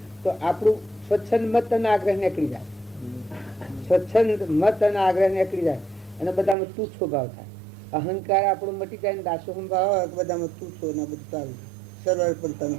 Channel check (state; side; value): drops out; left; at 6.6 s